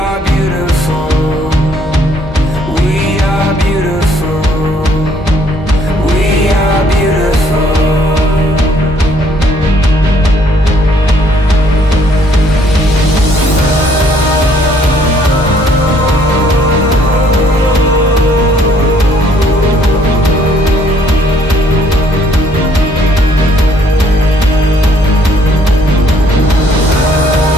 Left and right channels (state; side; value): normal; both; correlation 0.64